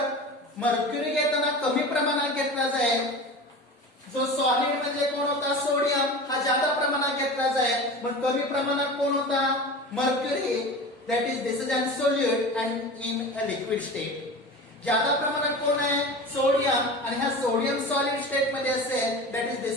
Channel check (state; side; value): normal; both; correlation 0.32